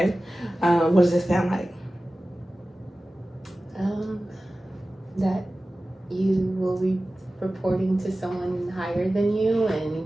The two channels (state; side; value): normal; both; correlation 0.96